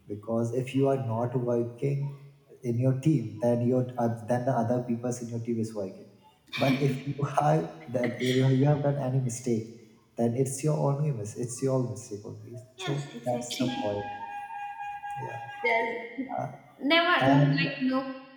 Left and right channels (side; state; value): both; identical; correlation 1.00